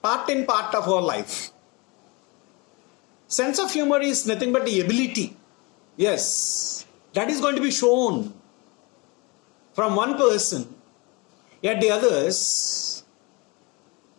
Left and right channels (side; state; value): right; quieter; 27.4 dB